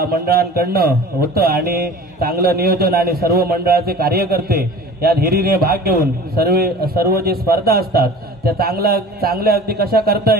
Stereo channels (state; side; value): normal; both; correlation 0.41